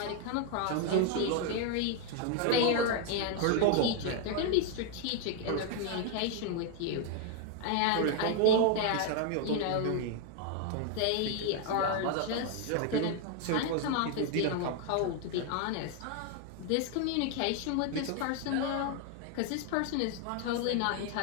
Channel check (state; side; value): different; both; correlation 0.00